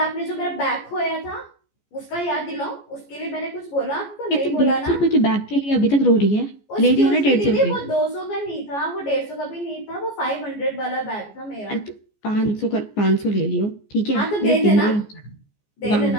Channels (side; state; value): right; late; 14 ms